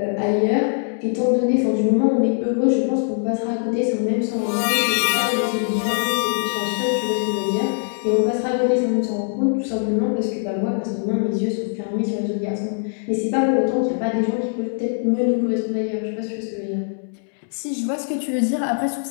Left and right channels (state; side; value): silent; right; 64 dB below the other